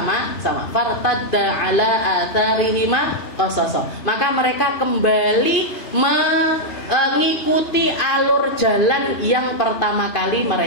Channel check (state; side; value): late; right; 2.5 ms